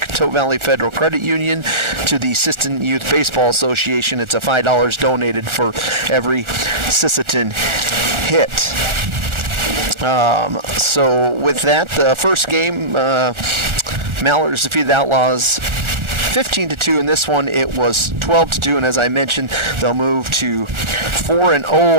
Valley Federal Credit Union to the Sisseton Youth Baseball Association. It's a $5 donated for every Sisseton hit. So with that, the first game, Mallards defeated Outlaws 15-2. In this one, it was 12-2, and as I mentioned, they'll move to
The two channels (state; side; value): late; left; 1.4 ms